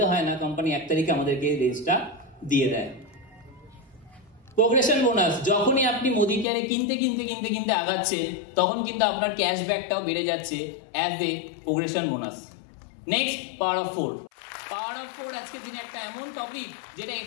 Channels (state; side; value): drops out; right; at 6.5 s